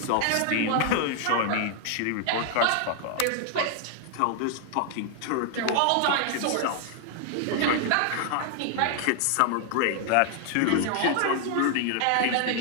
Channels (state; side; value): different; both; correlation 0.00